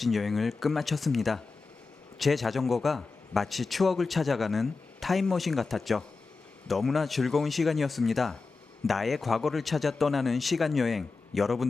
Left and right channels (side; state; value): right; quieter; 4.2 dB